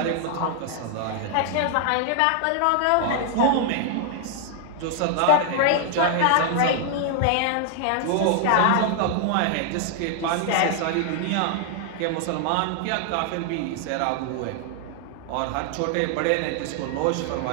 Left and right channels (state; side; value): different; both; correlation 0.00